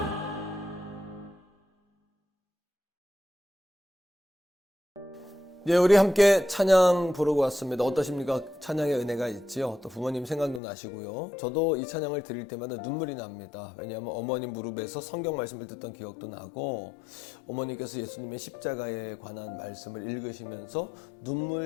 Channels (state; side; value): drops out; right; at 10.6 s